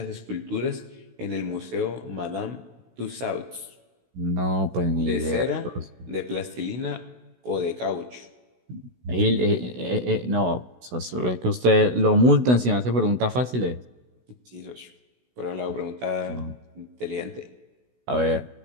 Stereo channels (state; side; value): late; left; 16 ms